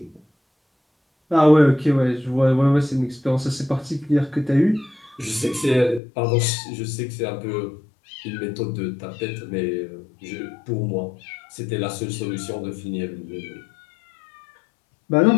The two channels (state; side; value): drops out; right; at 6.0 s